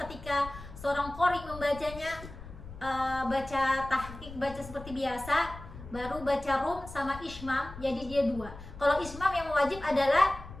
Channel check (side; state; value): left; noise; rumble, 14 dB below the sound